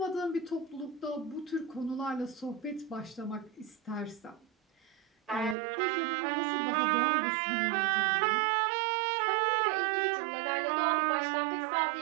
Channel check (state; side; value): drops out; left; at 5.6 s